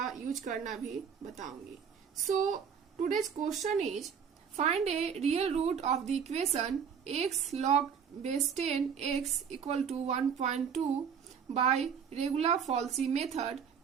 यूज करना भी बताऊंगी। सो today's question is, find a real root of the equation x log base 10 x equal to 1.2 by regular Falsy method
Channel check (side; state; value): left; quieter; 7.1 dB